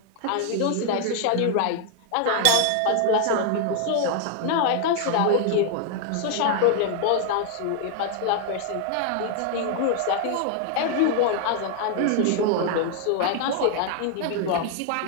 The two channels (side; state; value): both; different; correlation 0.00